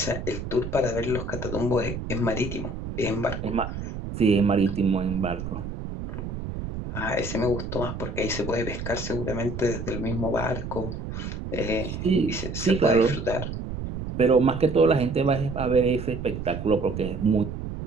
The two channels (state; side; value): noise; right; rumble, 7 dB below the sound